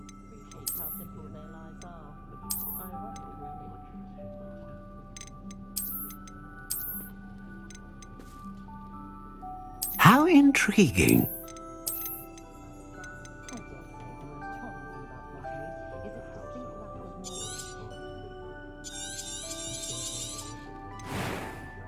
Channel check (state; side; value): identical; both; correlation 1.00